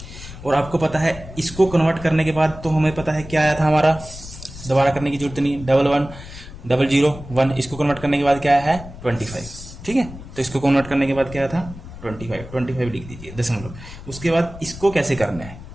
और आपको पता है इसको कन्वर्ट करने के बाद तो हमें पता है क्या आया था हमारा, दोबारा करने की जरूरत नहीं, 11001, इसको कन्वर्ट करने के बाद क्या है 25, ठीक है। तो इसको कन्वर्ट करने के बाद क्या था 25 लिख दीजिए दशमलव। उसके बाद इसको कैसे करना है,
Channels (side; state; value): left; noise; rumble, 14 dB below the sound